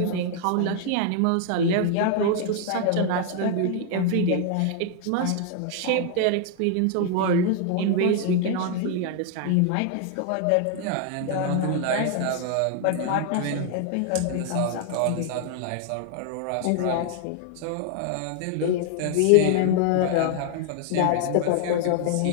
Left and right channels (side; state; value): both; different; correlation 0.00